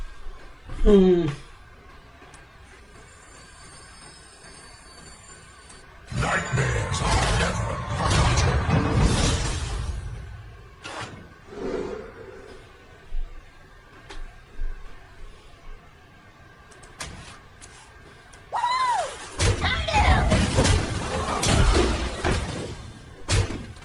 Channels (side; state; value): both; identical; correlation 1.00